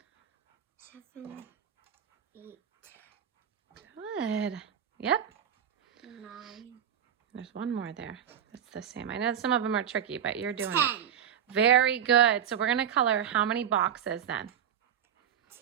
7, 8. Good. Yep. 9. There's one more there. That's the same. I know some of them are tricky, but you're doing 10. it. Very good. So we're going to color how many boxes then?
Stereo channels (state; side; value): quieter; left; 9.0 dB